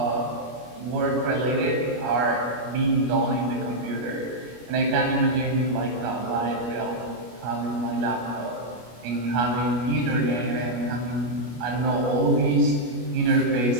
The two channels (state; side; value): late; left; 25 ms